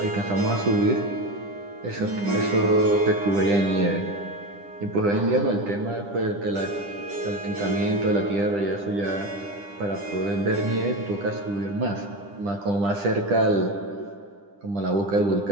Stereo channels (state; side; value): late; left; 10 ms